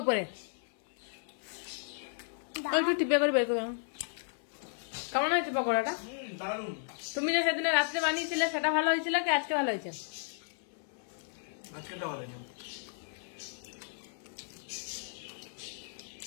উপরে দাও। একটু টিপে করে বের করে দাও। কেমন হয়েছে পকোড়াটা? দারুণ। তুমি যে সেদিনে রাত্রে বানিয়েছিলে সেটা ভালো হয়েছিল কি আজকে ভালো হয়েছে? আজকেটা ভালো হয়েছে।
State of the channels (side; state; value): right; silent; 55 dB below the other